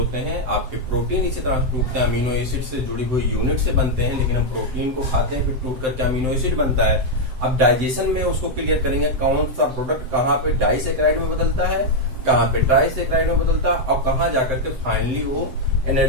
हैं। आपके प्रोटीन इसी तरह से टूटते हैं, अमीनो एसिड से जुड़ी हुई यूनिट से बनते हैं, लेकिन हम प्रोटीन को खाते हैं, फिर टूट करके अमीनो एसिड बनता है। अब डाइजेशन में उसको क्लियर करेंगे, कौन सा प्रोडक्ट कहाँ पे डाइसैकेराइड में बदलता है, कहाँ पे ट्राइसैकेराइड में बदलता है, और कहाँ जाकर के फाइनली वो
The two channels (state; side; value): late; left; 7.8 ms